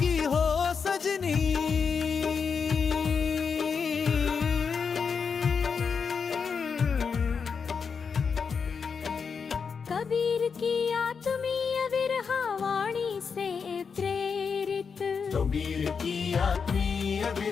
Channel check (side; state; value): right; quieter; 5.9 dB